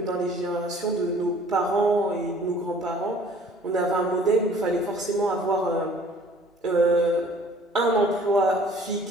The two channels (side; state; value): both; normal; correlation 0.53